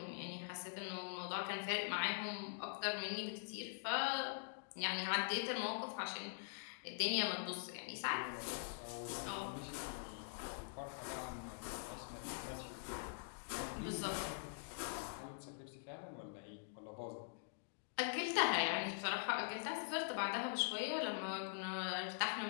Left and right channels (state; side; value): silent; right; digital silence